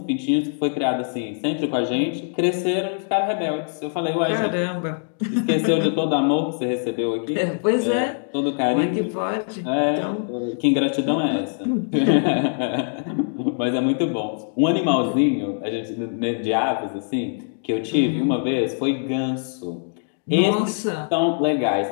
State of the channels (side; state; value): right; silent; digital silence